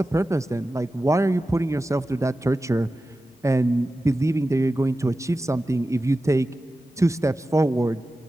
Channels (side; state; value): both; normal; correlation 0.94